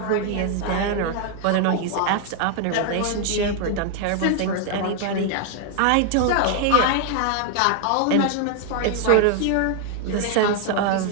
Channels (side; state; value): both; different; correlation 0.00